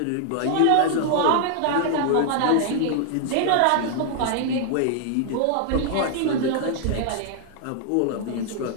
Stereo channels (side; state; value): both; different; correlation 0.00